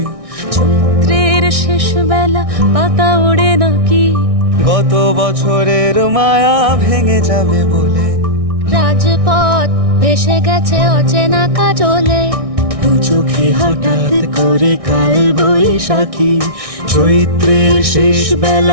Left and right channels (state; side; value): late; left; 1.6 ms